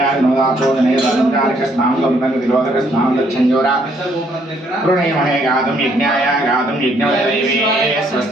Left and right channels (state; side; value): normal; both; correlation 0.68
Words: नोदापोदनेदानुचारिकस्नानं संतङ्गतिरोधकस्नानं दच्छञ्जोरा प्रणयमहे गातुं यज्ञाय गातुं यज्ञवैदेवी